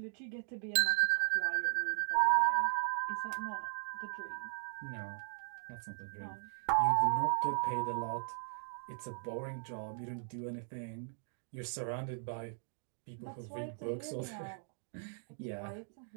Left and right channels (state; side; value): silent; left; digital silence